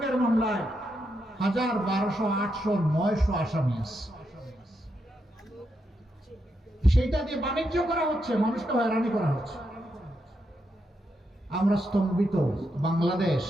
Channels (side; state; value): both; normal; correlation 0.82